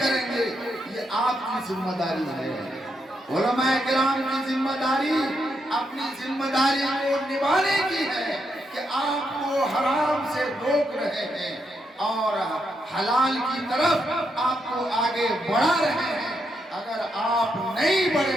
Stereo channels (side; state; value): both; normal; correlation 0.81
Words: گے یہ آپ کی ذمہ داری ہے۔ علماء کرام کی ذمہ داری اپنی ذمہ داری کو نبھانے کی ہے کہ آپ کو حرام سے روک رہے ہیں اور حلال کی طرف آپ کو آگے بڑھا رہے ہیں۔ اگر آپ نہیں